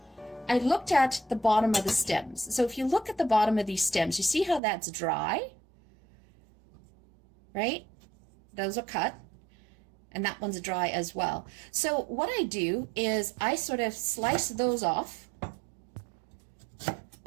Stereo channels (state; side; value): drops out; left; at 4.6 s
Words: I looked at the bottom of the stems. So if you look at the bottom of these stems, you see how that's dry, right? Those are cut, and that one's dry as well. So what I do is I sort of slice those off,